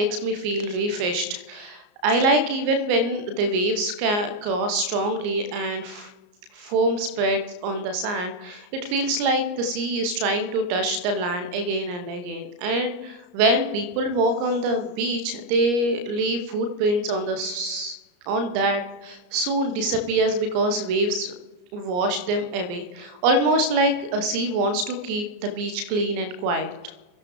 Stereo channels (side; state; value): left; late; 34 ms